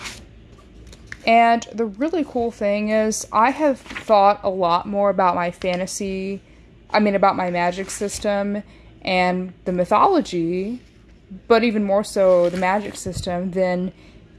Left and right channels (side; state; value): both; identical; correlation 1.00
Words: the really cool thing is I have thought a lot more about my about my magic system and the mythology, but even more so the magic system than